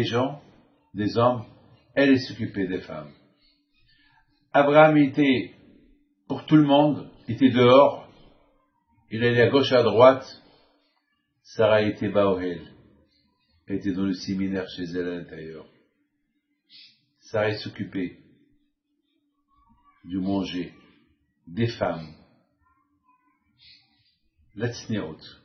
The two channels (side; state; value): both; identical; correlation 1.00